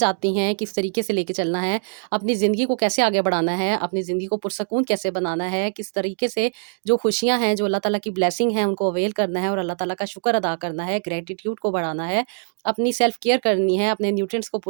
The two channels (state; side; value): silent; left; digital silence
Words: आती हैं, किस तरीके से लेके चलना है, अपनी ज़िंदगी को कैसे आगे बढ़ाना है, अपनी ज़िंदगी को पुरसकून कैसे बनाना है, किस तरीके से जो खुशियाँ हैं, जो अल्लाह ताला की ब्लेसिंग है, उनको अवेल करना है और अल्लाह ताला का शुक्र अदा करना है, ग्रैटिट्यूड को बढ़ाना है, अपनी सेल्फ केयर करनी है, अपने न्यूट्रिएंट्स को